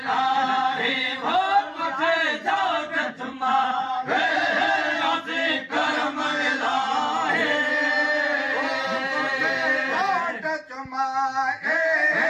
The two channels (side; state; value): both; identical; correlation 1.00